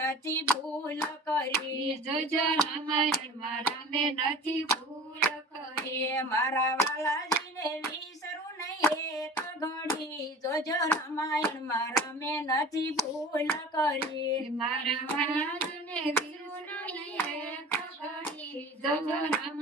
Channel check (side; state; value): both; normal; correlation 0.40